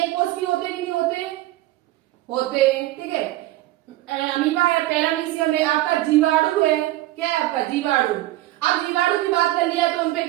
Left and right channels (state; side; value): quieter; left; 16.6 dB